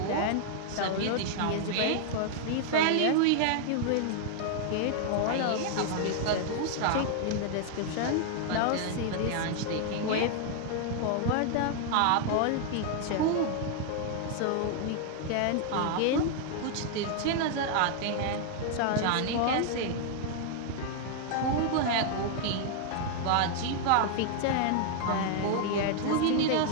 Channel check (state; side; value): different; both; correlation 0.00